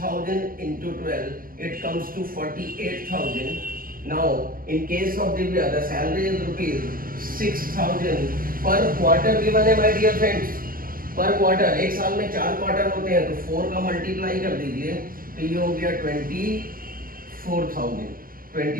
into 12 it comes to 48,000. Now in case of Divya the salary is rupees 6,000 per quarter given है my dear friends। पर क्वार्टर, एक साल में 4 क्वार्टर होते हैं तो 4 का मल्टीप्लाई कर दीजिए तो ये हो गया 24,000।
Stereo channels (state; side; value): late; left; 0.42 ms